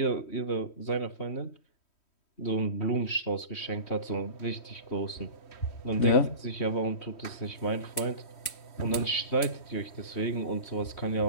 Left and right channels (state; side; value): late; right; 3.1 ms